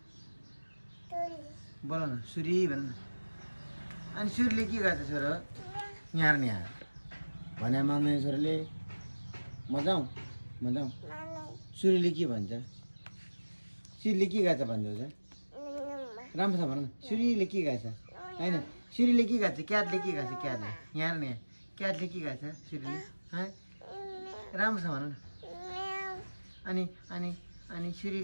बोलो न सुरी भन्नु अनि सुरीले के गर्छ छोरो यहाँ नि यहाँ भने मान्दैन छोरीले मजाऊ सुरीले के भन्छ सुरीले के गर्छ भन्दैछ राम्रोसँग भन न सुरीले के गर्छ होइन सुरीले के गर्छ क्याटले के गर्छ क्याटले यहाँ नि क्याटले के गर्छ सुरीले राम्रोसँग भन न अनि अनि अनि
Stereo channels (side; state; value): both; inverted; correlation -1.00